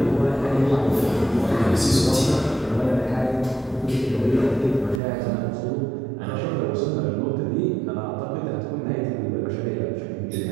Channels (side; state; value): left; drops out; at 5.0 s